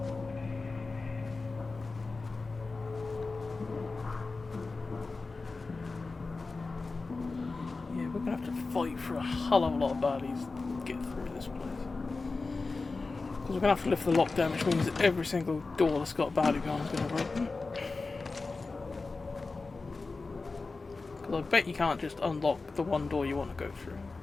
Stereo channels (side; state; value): right; quieter; 3.8 dB